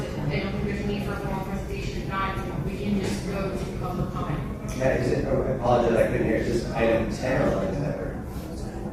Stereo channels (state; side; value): identical; both; correlation 1.00